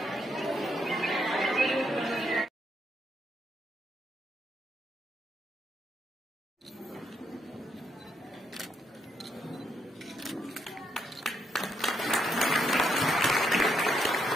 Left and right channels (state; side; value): normal; both; correlation 0.77